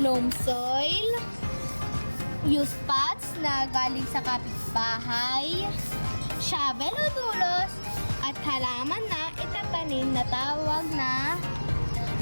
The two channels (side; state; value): both; inverted; correlation -1.00